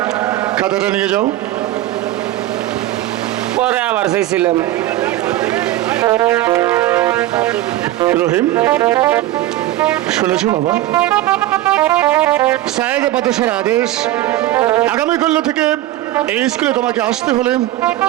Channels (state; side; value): quieter; left; 15.0 dB